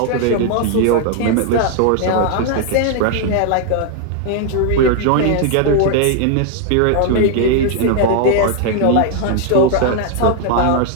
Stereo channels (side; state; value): both; different; correlation 0.00